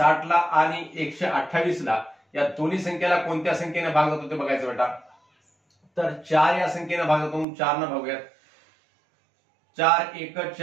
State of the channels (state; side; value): drops out; left; at 7.5 s